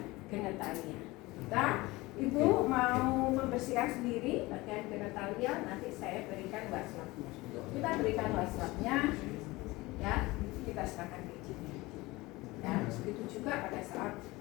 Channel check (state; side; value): quieter; right; 21.1 dB